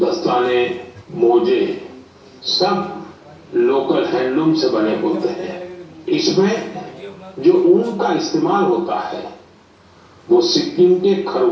मोजे सब लोकल हैंडलूम से बने होते हैं। इसमें जो ऊन का इस्तेमाल होता है वो सिक्किम के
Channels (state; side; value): identical; both; correlation 1.00